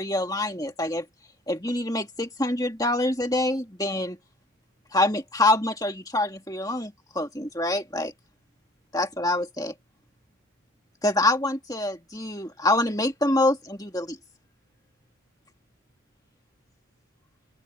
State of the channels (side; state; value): both; normal; correlation 0.52